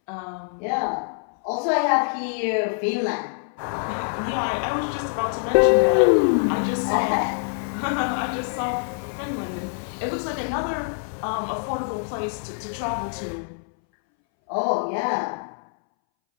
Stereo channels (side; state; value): right; silent; 62 dB below the other